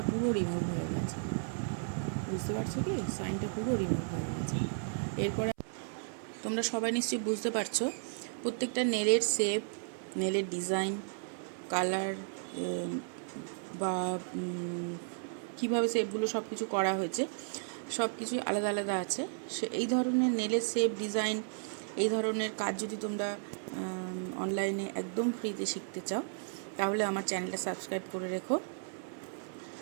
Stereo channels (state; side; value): silent; left; 55 dB below the other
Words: পুরো রিমুভ হয়ে গেছে, বুঝতে পারছো কি? সাইনটা পুরো রিমুভ হয়ে গেছে। এরপরে তোমরা সবাই নিশ্চয়ই বুঝতে পারছো প্রত্যেকটা নেলের শেপ, নেলের ডিজাইন, কালার বা কীভাবে শেপগুলো সব কিছু করা হয়েছে, সব কিছুই আলাদা আলাদা আছে। এই ধরনের নেলের শেপ, ডিজাইন, এই ধরনের কাজ যদি তোমরা অনলাইনে একদম ফ্রিতে শিখতে চাও, তাহলে আমার চ্যানেলটা সাবস্ক্রাইব করে রেখো।